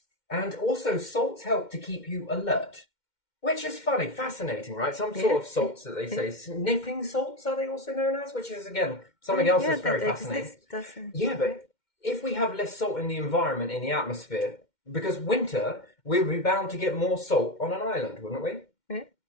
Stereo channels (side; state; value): right; late; 2.1 ms